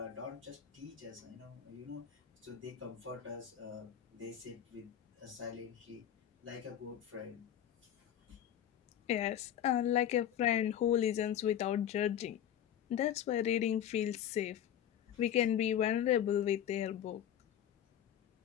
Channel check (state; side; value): quieter; right; 10.3 dB